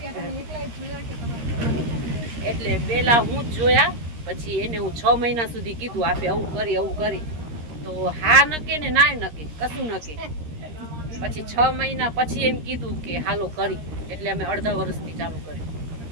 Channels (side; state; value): left; late; 13 ms